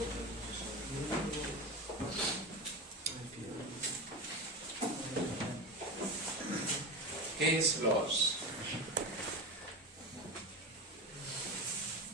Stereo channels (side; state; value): both; normal; correlation 0.22